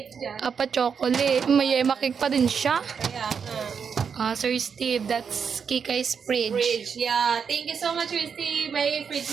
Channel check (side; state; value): left; quieter; 6.5 dB